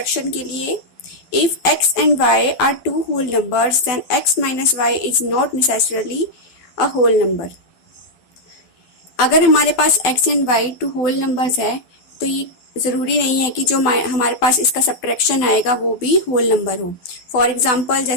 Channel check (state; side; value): late; right; 12 ms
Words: के लिए, if x and y are two whole numbers then x minus y is not necessarily a whole number. अगर हमारे पास x and y two whole numbers है तो ये ज़रूरी नहीं है कि जो हमारे पास इसका सब्ट्रैक्शन आएगा वो भी होल नंबर हो। फॉर एग्जांपल